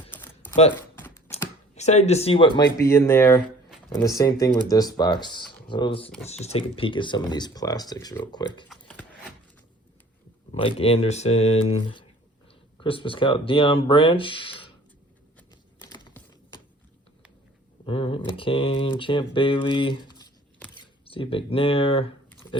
But excited to see what might be in there. And the same thing with this box. So let's just take a peek at some of these plastics real quick. Mike Anderson, Christmas Cow, Deion Branch. All right, McCain, Champ Bailey, Steve McNair,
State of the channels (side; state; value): both; normal; correlation 0.51